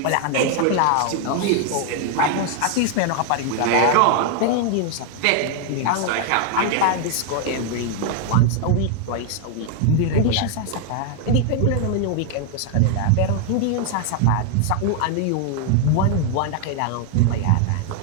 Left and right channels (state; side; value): different; both; correlation 0.00